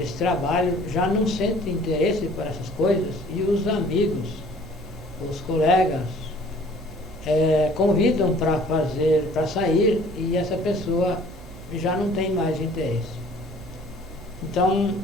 esse trabalho, já não sente interesse por essas coisas, e os amigos, os colegas, convidam para sair, e essa pessoa já não tem mais interesse. Então,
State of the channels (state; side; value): noise; right; hum, 17 dB below the sound